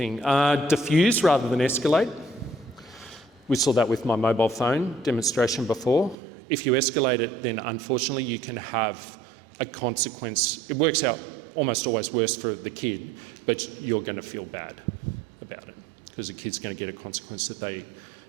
Diffuse rather than escalate. We saw that with my mobile phone demonstration before. If you escalate it, then unfortunately you can have a consequence. It works out almost always worse for the kid, but you're going to feel bad about it because the kid's going to get a consequence that they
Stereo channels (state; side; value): drops out; left; at 6.2 s